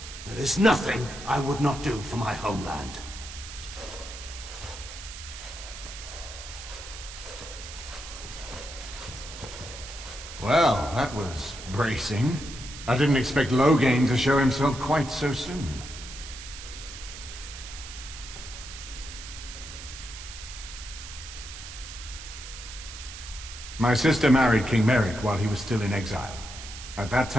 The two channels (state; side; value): noise; right; hiss, 12 dB below the sound